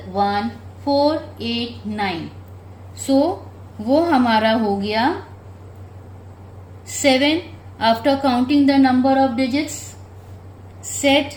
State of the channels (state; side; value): identical; both; correlation 1.00